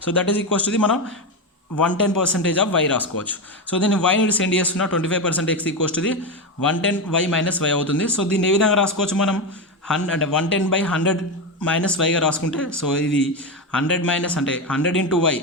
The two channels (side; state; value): both; normal; correlation 0.14